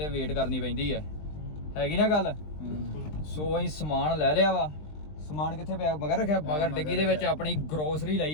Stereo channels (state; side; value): late; right; 20 ms